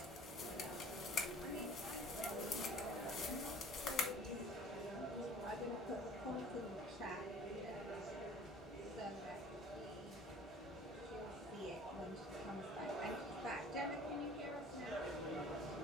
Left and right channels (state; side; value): normal; both; correlation 0.48